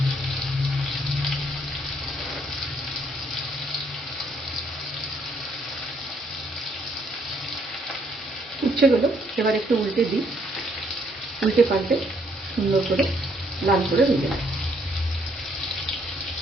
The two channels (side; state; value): both; normal; correlation 0.69